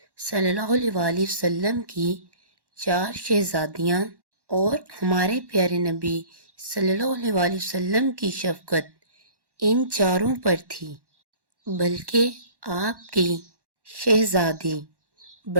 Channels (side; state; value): left; late; 1.1 ms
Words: صلی اللہ علیہ وآلہ وسلم کی 4 شہزادیاں اور ہمارے پیارے نبی صلی اللہ علیہ وآلہ وسلم کی شفقت ان چاروں پر تھی، بلکہ آپ کی شہزادی